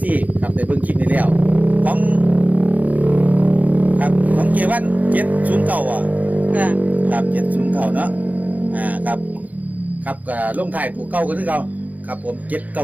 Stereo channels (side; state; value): left; late; 0.078 ms